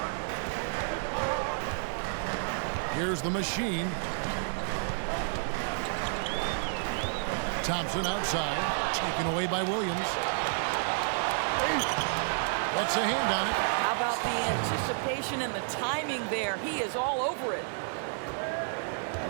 Here's the machine. Thompson outside, taken away by Williams. That's a hand on it. How about the anticipation and the timing there? He is all over it.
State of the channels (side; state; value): left; silent; 57 dB below the other